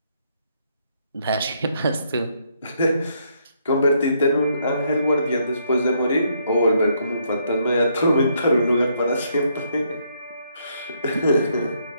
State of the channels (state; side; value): inverted; both; correlation -0.72